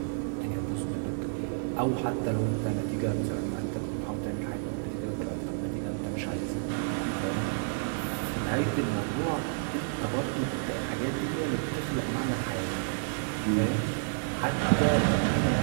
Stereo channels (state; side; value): silent; left; digital silence